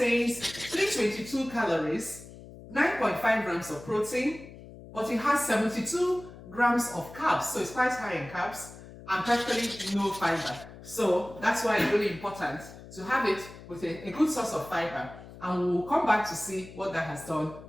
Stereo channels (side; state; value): left; noise; hum, 17 dB below the sound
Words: 322 calories, 9.5 grams of protein, but it has 72 grams of carbs, so it's quite high in carbs, and practically no fiber. So that's why it's really important to have it with a good source of fiber, and we'll come back to see what that has done